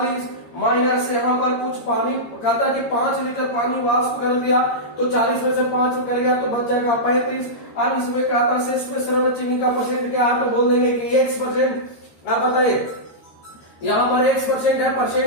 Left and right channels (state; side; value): late; right; 13 ms